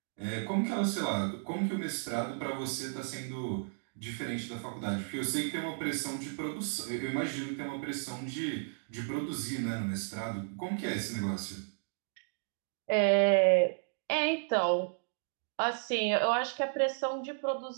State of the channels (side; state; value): left; silent; digital silence